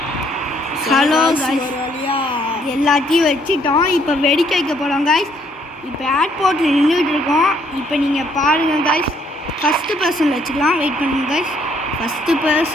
ஹலோ காய்ஸ் எல்லாத்தையும் வச்சுட்டோம். இப்போ வெடிக்க வைக்க போகிறோம் காய்ஸ். இப்போ ஏர்போர்ட்டில் நின்றுட்டு இருக்கோம். இப்போ நீங்கள் பாருங்கள் காய்ஸ். ஃபஸ்ட்டு பர்சனில் வச்சுக்கலாம். வெயிட் பண்ணுங்க காய்ஸ். ஃபஸ்ட்டு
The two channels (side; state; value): both; normal; correlation 0.67